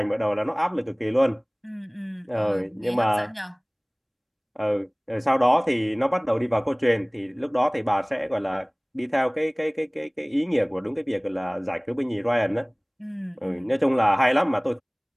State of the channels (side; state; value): both; identical; correlation 1.00